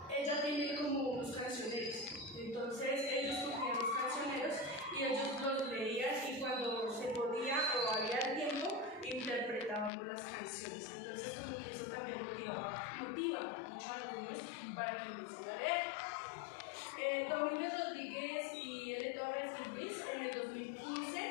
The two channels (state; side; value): drops out; right; at 9.9 s